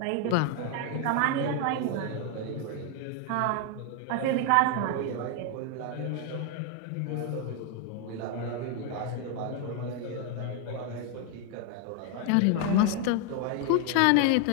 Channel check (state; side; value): different; both; correlation 0.01